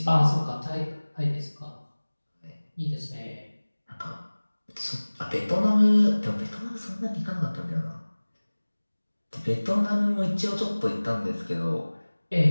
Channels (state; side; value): inverted; both; correlation -1.00